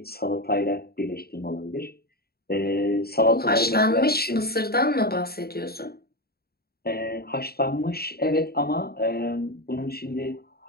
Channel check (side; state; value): right; late; 0.45 ms